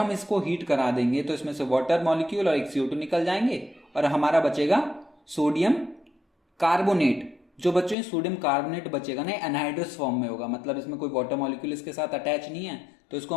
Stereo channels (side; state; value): right; drops out; at 8.0 s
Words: इसको हीट करा देंगे तो इसमें से वाटर मॉलिक्यूल और एक CO2 निकल जाएंगे और हमारा बचेगा सोडियम कार्बोनेट। जो बच्चों सोडियम कार्बोनेट बचेगा ना, एनहाइड्रस फॉर्म में होगा, मतलब इसमें कोई वाटर मॉलिक्यूल इसके साथ अटैच नहीं है, तो इसको